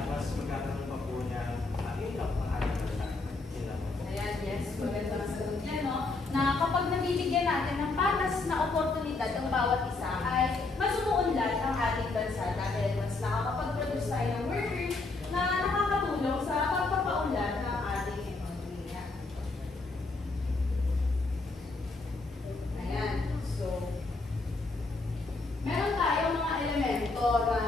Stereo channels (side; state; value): right; quieter; 3.5 dB